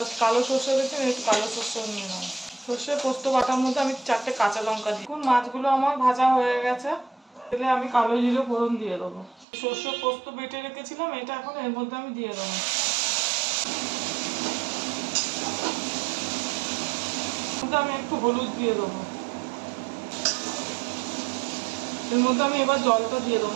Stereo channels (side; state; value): left; drops out; at 9.5 s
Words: কালো সর্ষে দেখুন, একটু কালো সর্ষেও নিয়ে নেবো। সর্ষে পোস্ত বাটার মধ্যে আমি 4টে কাঁচা লঙ্কা দিই। দেখুন মাছগুলো আমার ভাজা হয়ে গেছে। তেলে আমি কালো জিরে ফোড়ন দিয়ে দেবো। সর্ষে পোস্ত বেটে রেখেছিলাম, এটা এখন এর মধ্যে আমি দিয়ে দেবো। আমি একটু হলুদ দিয়ে দেবো। এর মধ্যে আমি এবার জলটা দিয়ে দেবো,